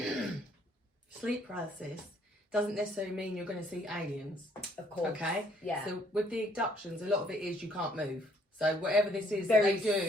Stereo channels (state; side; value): normal; both; correlation 0.65